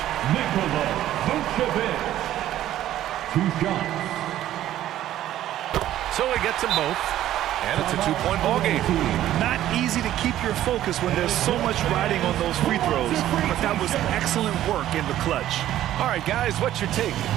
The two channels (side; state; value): left; quieter; 12.9 dB